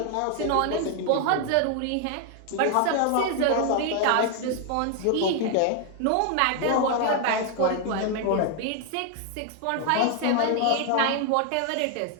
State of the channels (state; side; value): different; both; correlation 0.00